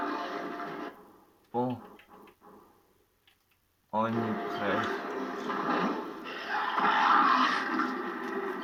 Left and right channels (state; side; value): identical; both; correlation 1.00